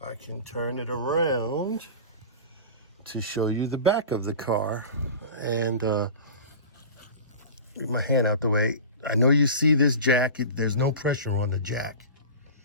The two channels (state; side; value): inverted; both; correlation -0.34